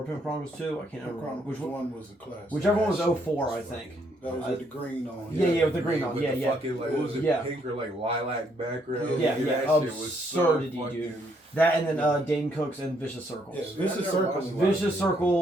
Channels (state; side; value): normal; both; correlation 0.71